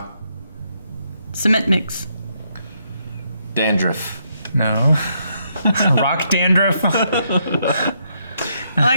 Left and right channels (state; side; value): inverted; both; correlation -0.76